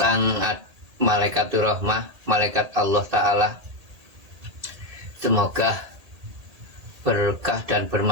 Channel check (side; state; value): left; late; 1.8 ms